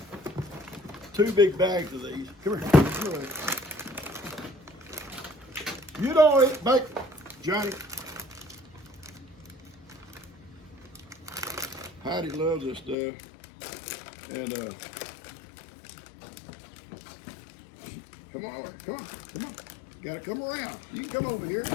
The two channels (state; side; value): drops out; right; at 13.0 s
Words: 2 big bags of these. Come here. Come here. You don't eat bacon, Johnny. Heidi loves this stuff. And come on, come on, come on. You gotta come around. You can come over here.